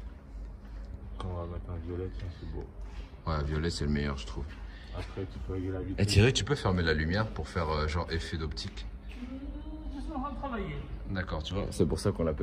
On va mettre un violet, tiens, c'est beau. Ouais, violet, c'est le meilleur, je trouve. Après, tu peux régler la vitesse. Et Thierry, tu peux fermer la lumière pour faire genre effet d'optique? Je suis en train de travailler. D'accord, tu vois. C'est pour ça qu'on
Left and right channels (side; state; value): both; identical; correlation 1.00